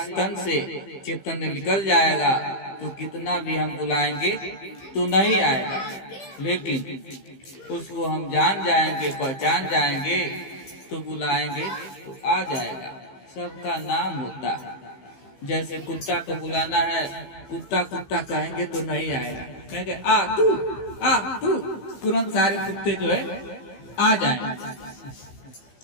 तन से चेतन निकल जाएगा तो कितना भी हम बुलाएंगे तो नहीं आएगा, लेकिन उसको हम जान जाएंगे, पहचान जाएंगे, तो बुलाएंगे तो आ जाएगा। सबका नाम होता है। जैसे कुत्ता को बुलाना है, कुत्ता कुत्ता कहेंगे तो नहीं आएगा, कहेंगे आ तू, तुरंत सारे कुत्ते जो है आ जाएंगे।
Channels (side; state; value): right; late; 15 ms